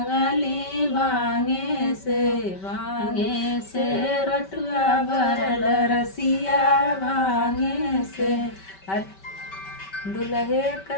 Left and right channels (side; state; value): right; late; 5.2 ms